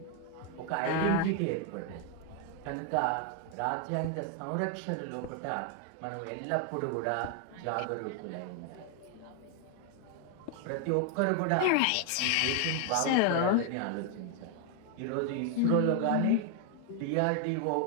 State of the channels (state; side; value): different; both; correlation 0.00